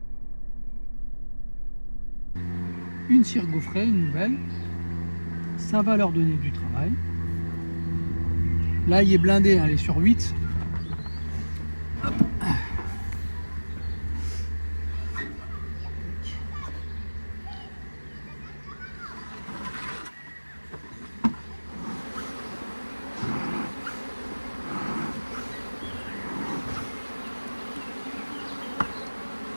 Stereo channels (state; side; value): inverted; both; correlation -1.00